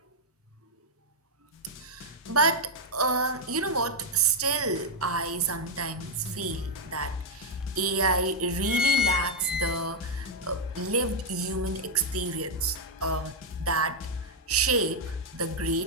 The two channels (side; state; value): both; normal; correlation 0.00